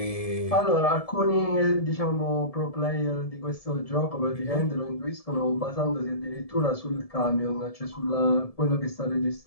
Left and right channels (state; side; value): late; right; 1.7 ms